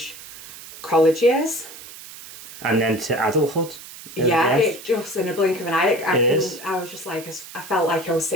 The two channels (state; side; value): noise; right; hiss, 15 dB below the sound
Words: college years. And then to adulthood. Yeah, it just in a blink of an eye. I was just like, I felt like I was